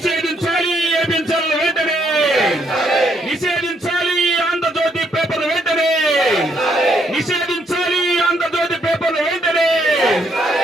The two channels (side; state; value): both; normal; correlation 0.72